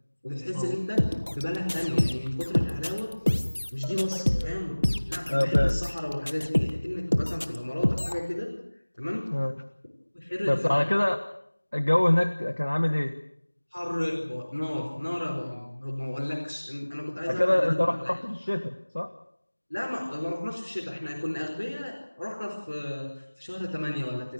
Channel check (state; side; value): inverted; both; correlation -1.00